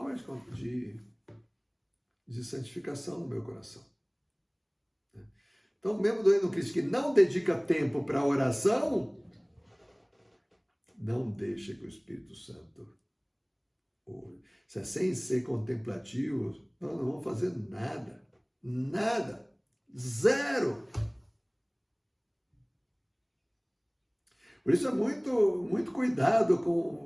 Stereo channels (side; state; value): both; identical; correlation 1.00